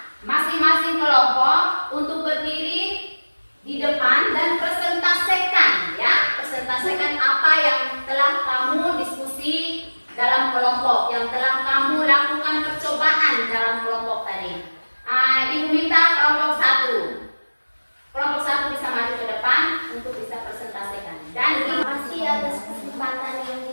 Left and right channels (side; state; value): both; inverted; correlation -1.00